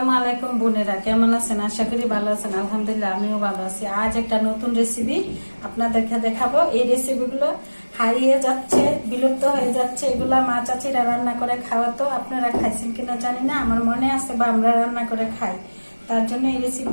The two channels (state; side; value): inverted; both; correlation -1.00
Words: আলাইকুম বোনেরা, কেমন আছেন? আশা করি ভালো আছেন। আলহামদুলিল্লাহ আমিও ভালো আছি। আজ একটা নতুন রেসিপি আপনাদেরকে দেখাবো। এই রেসিপিগুলো হারিয়ে যাচ্ছে, বিলুপ্ত হয়ে যাচ্ছে। এগুলা মা চাচিরা রান্না করে খাওয়াতো। আপনারা খাইছেন কিনা জানি না, আমার মনে আছে বা আমরা রান্না করে খাই। তার জন্য এই